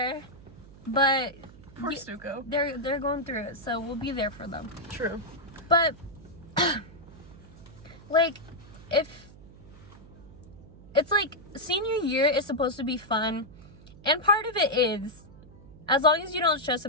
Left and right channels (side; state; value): right; noise; hum, 20 dB below the sound